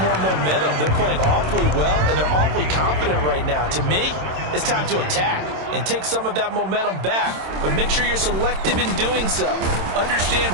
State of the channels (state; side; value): late; left; 27 ms